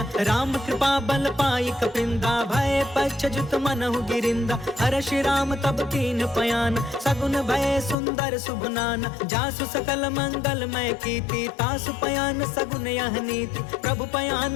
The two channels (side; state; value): right; drops out; at 8.0 s